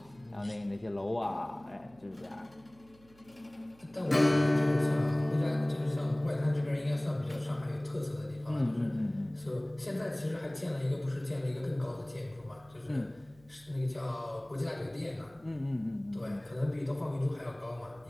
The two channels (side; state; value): right; noise; hum, 27 dB below the sound